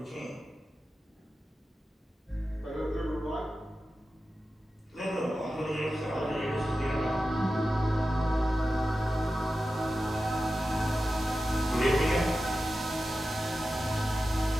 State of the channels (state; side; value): normal; both; correlation 0.93